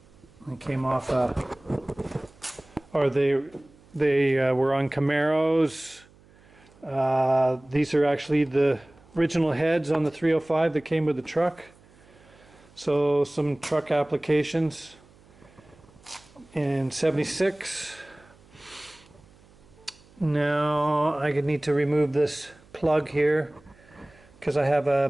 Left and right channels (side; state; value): right; noise; hum, 27 dB below the sound